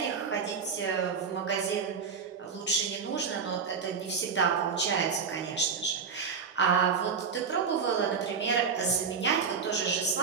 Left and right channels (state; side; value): quieter; left; 5.9 dB